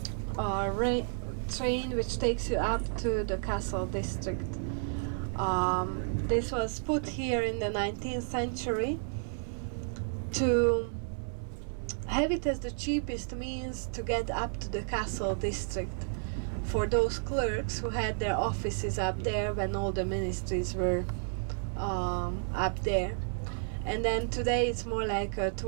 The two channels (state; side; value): silent; left; 57 dB below the other